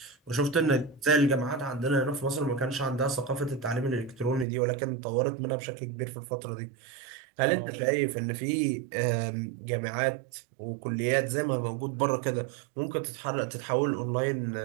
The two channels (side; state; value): left; drops out; at 4.5 s